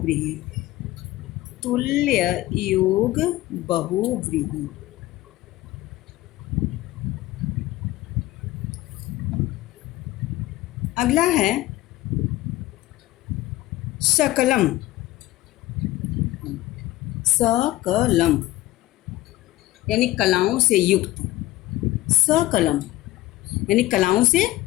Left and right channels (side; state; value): right; quieter; 16.7 dB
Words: तुल्य योग बहुव्रीहि। अगला है सकलम। सकलम यानी कलाओं से युक्त। सकलम यानी कलाओं से